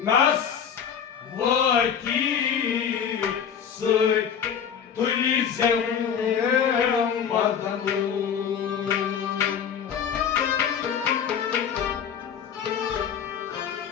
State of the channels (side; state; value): right; quieter; 7.9 dB